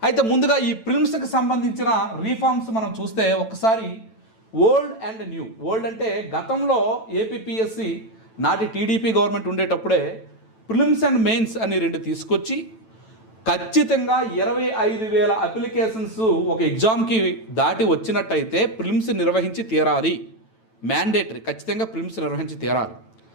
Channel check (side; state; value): right; late; 9.1 ms